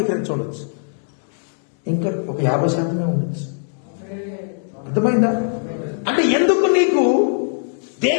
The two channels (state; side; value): silent; right; digital silence